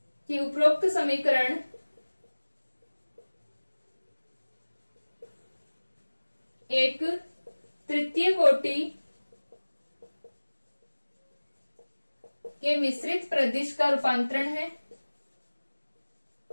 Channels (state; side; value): inverted; both; correlation -1.00